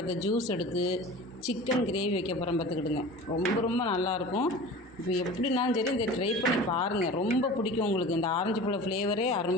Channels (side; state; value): both; normal; correlation 0.37